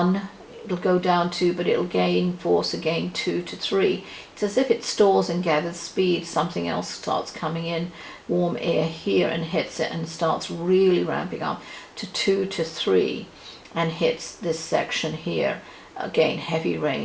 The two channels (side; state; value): both; identical; correlation 1.00